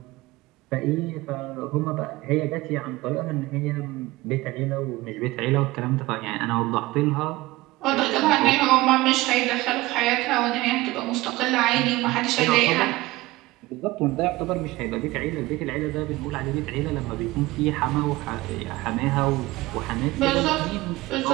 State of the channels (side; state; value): left; quieter; 19.6 dB